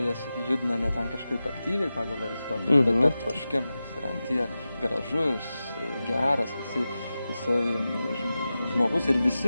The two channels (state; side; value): inverted; both; correlation -0.94